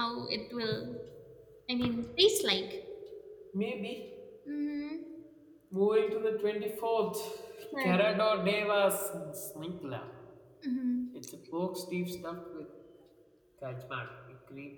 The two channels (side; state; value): both; identical; correlation 1.00